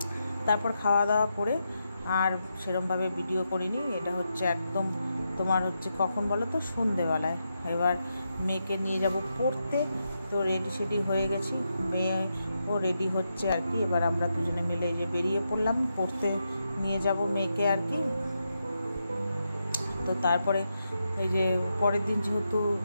তারপর খাওয়া দাওয়া করে আর সেরমভাবে ভিডিও করিনি, এটা হচ্ছে একদম তোমার হচ্ছে কখন বলো তো, সন্ধেবেলায়। এবার মেয়েকে নিয়ে যাব পড়তে, তো রেডি সেডি হয়ে গেছি, মেয়েও রেডি হচ্ছে আর কি। এবার আমরা দুজনে মিলে এই যে বেরিয়ে পড়লাম, পড়তে নিয়ে যাব মেয়েকে আর কি। তো তারপরে এই যে পরের দিন যেহেতু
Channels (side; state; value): both; inverted; correlation -0.85